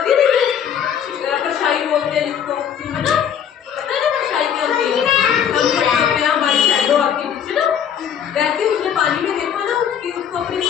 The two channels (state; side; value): quieter; right; 8.6 dB